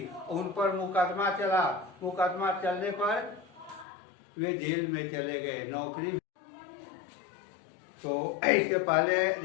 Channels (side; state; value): right; drops out; at 3.9 s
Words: उन पर मुकदमा चला, मुकदमा चलने पर वे जेल में चले गए, नौकरी। तो इसके पहले